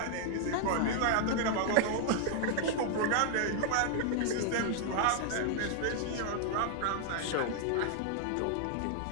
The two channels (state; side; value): different; both; correlation -0.01